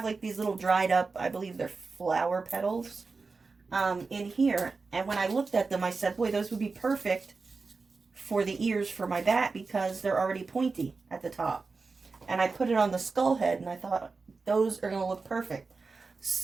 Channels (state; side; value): quieter; left; 4.2 dB